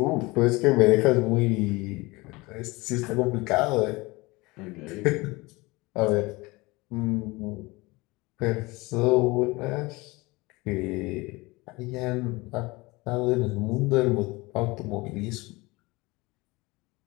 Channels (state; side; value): quieter; right; 23.1 dB